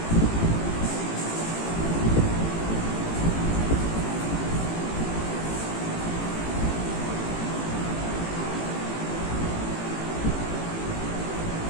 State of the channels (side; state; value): right; late; 18 ms